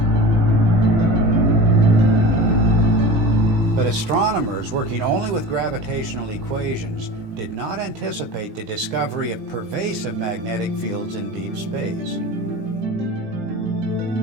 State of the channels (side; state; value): left; late; 18 ms